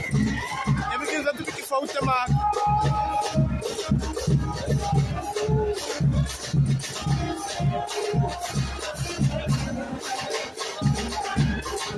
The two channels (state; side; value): identical; both; correlation 1.00